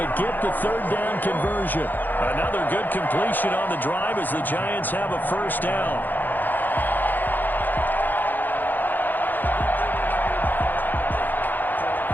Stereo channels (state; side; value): late; right; 0.087 ms